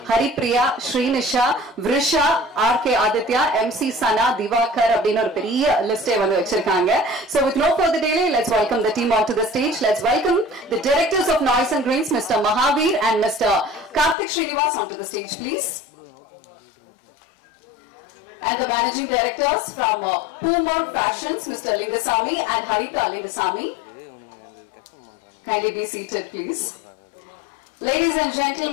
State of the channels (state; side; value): drops out; right; at 14.2 s